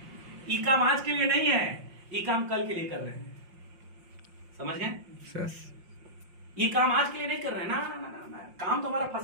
ई काम आज के लिए नहीं है, ई काम कल के लिए कर रहे हैं। समझ गए? ये काम आज के लिए नहीं कर रहे हैं ना, ना, ना, ना, ना। काम तो हमारा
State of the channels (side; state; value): left; late; 5.7 ms